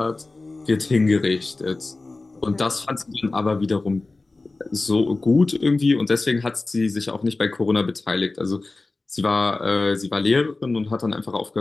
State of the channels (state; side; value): quieter; right; 3.4 dB